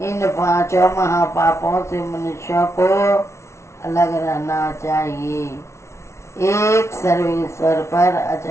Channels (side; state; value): right; late; 0.13 ms